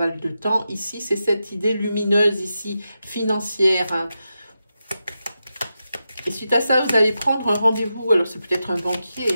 de temps, ici, c'est cette idée lumineuse, ici, financière. Hein. Et suite à ça, vous allez prendre un rendez-vous. Alors, c'est peut-être un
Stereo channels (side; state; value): both; inverted; correlation -0.89